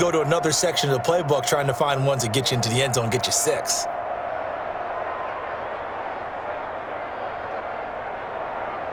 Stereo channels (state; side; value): identical; both; correlation 1.00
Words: to another section of the playbook trying to find ones that get you into the end zone and get you 6?